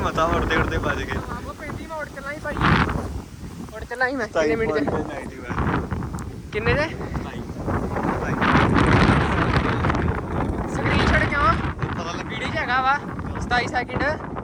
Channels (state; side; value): identical; both; correlation 1.00